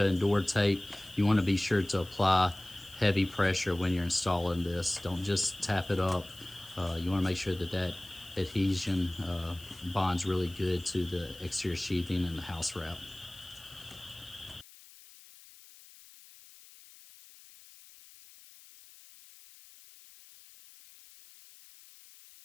and door tape, you want to be sure to apply heavy pressure when you're installing this. Don't just tap it up. You want to make sure that that adhesion bonds really good to the exterior sheathing and the house wrap.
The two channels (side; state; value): left; noise; hiss, 21 dB below the sound